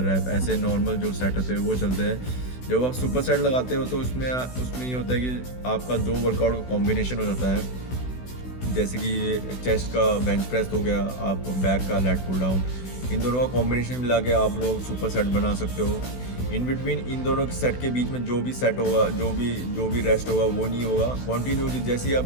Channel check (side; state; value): right; late; 16 ms